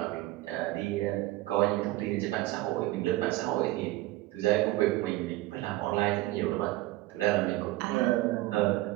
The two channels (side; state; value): left; quieter; 18.2 dB